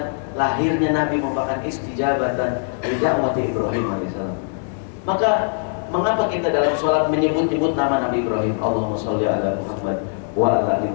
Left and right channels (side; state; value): right; silent; digital silence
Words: lahirnya Nabi merupakan istijabatan li da'wati Ibrahim alaihissalam. Maka mengapa kita dalam sholat menyebut-nyebut nama Nabi Ibrahim? Allahumma sholli ala Muhammad wa ala ali